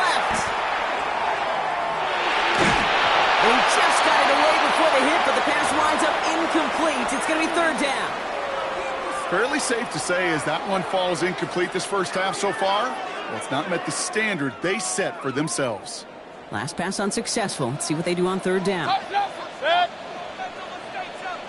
He just got it away before the hit, but the pass winds up incomplete. It's going to be third down. Fairly safe to say as that one falls incomplete this first half so far. Well, it's not met the standard they set for themselves. Last pass unsuccessful. Let's see what they do on third down.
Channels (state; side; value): identical; both; correlation 1.00